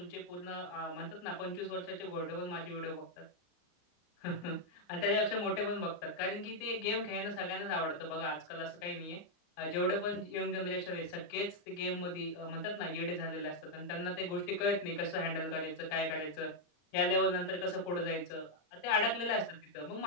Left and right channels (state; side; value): late; right; 34 ms